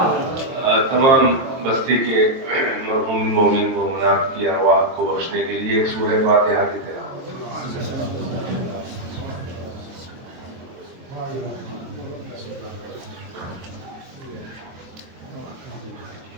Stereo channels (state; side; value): late; left; 22 ms